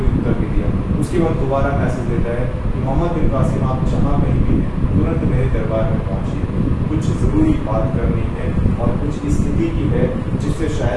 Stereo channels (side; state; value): both; identical; correlation 1.00